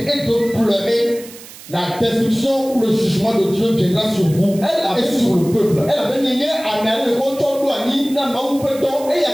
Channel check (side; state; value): right; noise; hiss, 17 dB below the sound